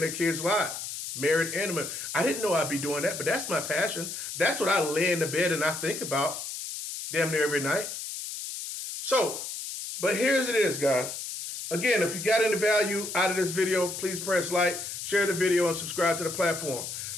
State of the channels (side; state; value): left; noise; hiss, 7 dB below the sound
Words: kids' lives. Married and married. I didn't know I'd be doing that, but that's my passion. That's what I lay in the bed and I think about damn near every night. So, but here's it is, guys. Again, if you got any value out of this video, please press like, share the video, and subscribe to the platform.